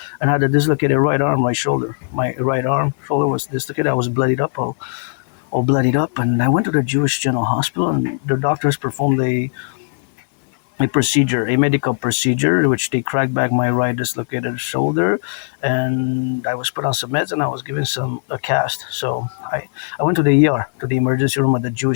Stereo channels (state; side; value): silent; right; digital silence